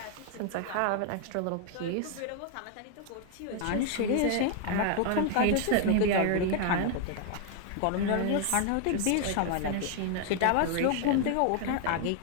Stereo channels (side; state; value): both; different; correlation 0.00